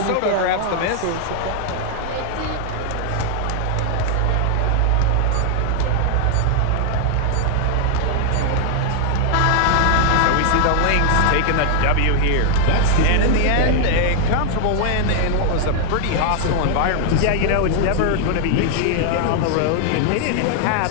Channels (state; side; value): different; both; correlation 0.00